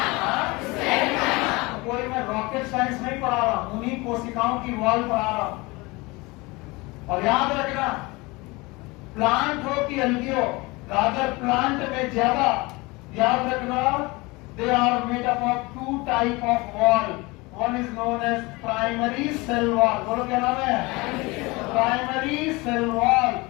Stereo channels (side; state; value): right; quieter; 24.0 dB